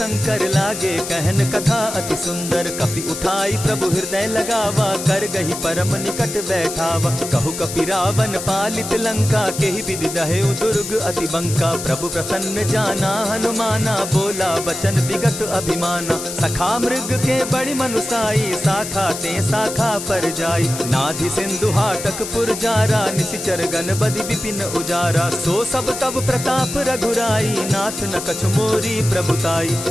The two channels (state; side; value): noise; left; hiss, 7 dB below the sound